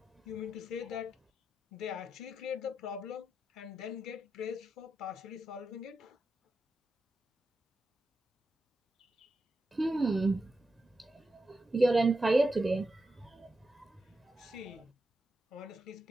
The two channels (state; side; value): normal; both; correlation 0.88